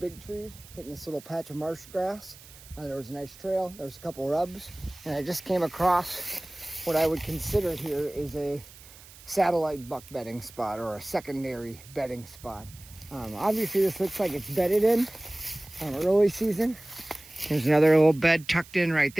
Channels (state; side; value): noise; right; hiss, 20 dB below the sound